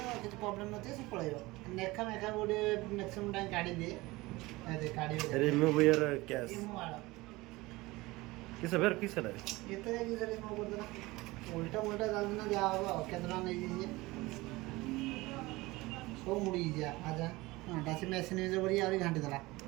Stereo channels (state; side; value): quieter; left; 20.9 dB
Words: କିଛି ପ୍ରୋବ୍ଲେମ୍ ନଥିବ ସେ ପଳେଇବ ନେଖା ମେଖା ଗୋଟେ ମ୍ୟାକ୍ସିମମ୍ ଟାଇମ୍ କାଢ଼ି ଦିଏ କାଢ଼ି रिमूव योर कैश किस बेर किस है ଏତେ ଯାଇକି ସେଠି କ'ଣ କରିଦେଲା ଉଲ୍ଟା ମୁଲ୍ଟା ଚାଲିଛି ନା ଯାହା ହବ ଆଉ କେତେ ଟଙ୍କା ନେଇଯାଇଛି ସବୁ ମୁଡ଼ି ଯା ଆଜା ହଁ ଡାସି ମେସିନ୍ ୟୁଜ୍ କରି ଆହୁରି ଘାଣ୍ଟି ଦେଲା